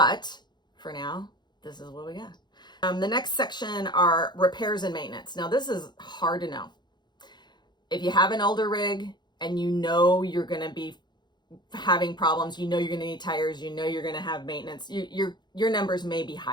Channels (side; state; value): right; late; 0.21 ms